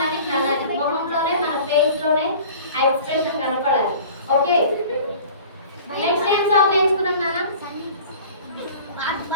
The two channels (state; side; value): inverted; both; correlation -0.44